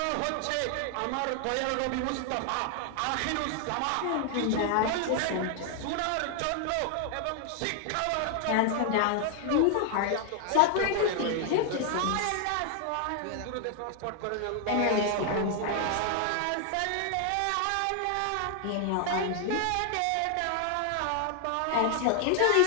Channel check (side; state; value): both; different; correlation 0.00